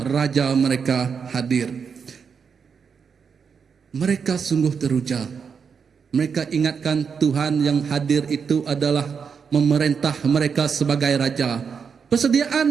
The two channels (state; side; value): quieter; left; 6.3 dB